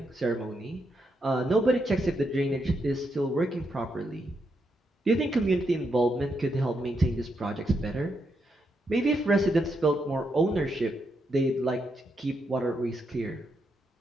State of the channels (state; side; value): normal; both; correlation 0.81